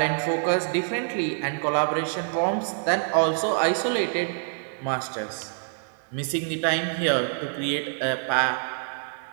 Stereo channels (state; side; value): silent; left; 61 dB below the other